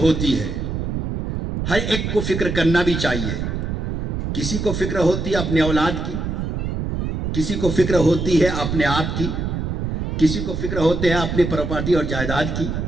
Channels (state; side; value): noise; right; rumble, 2 dB below the sound